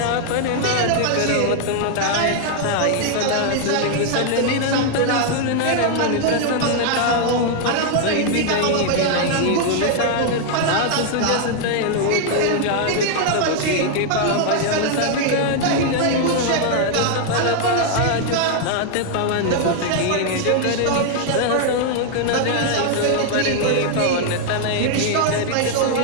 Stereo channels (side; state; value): both; different; correlation 0.00